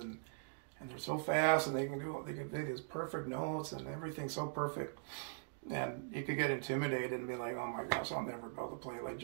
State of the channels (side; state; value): left; silent; digital silence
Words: they're so fast, and they can play these perfect notes and everything's so perfect. And you could get intimidated and be like, oh my gosh, I'll never be able to play like